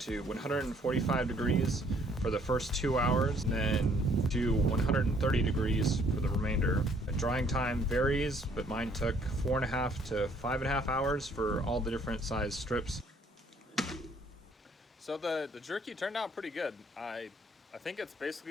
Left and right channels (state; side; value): normal; both; correlation 0.63